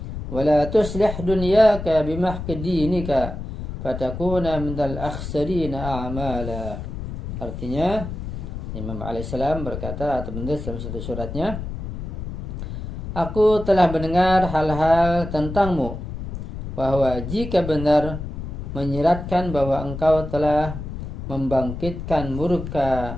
wa la tuslih dunyaka bimahqi dinika fatakuna minal akhsarina a'mala. Artinya Imam alaihissalam berkata atau menulis dalam satu suratnya, aku telah mendengar hal-hal tentangmu, bahwa jika benar menyiratkan bahwa engkau telah membangkitkan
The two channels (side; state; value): left; noise; rumble, 7 dB below the sound